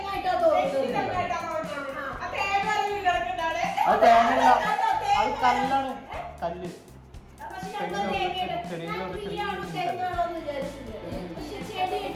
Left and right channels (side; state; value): both; identical; correlation 1.00